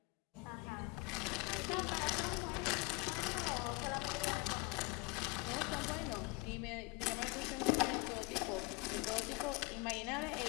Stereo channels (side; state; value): right; quieter; 25.4 dB